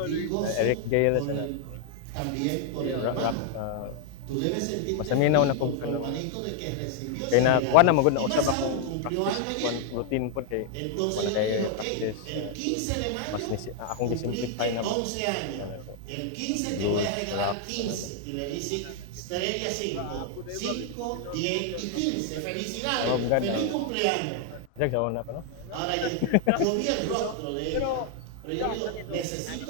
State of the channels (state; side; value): different; both; correlation 0.00